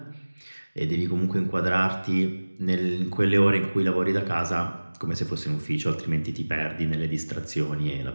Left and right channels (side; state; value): both; inverted; correlation -1.00